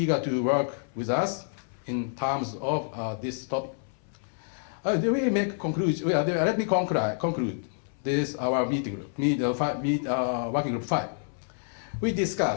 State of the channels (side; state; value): right; silent; 59 dB below the other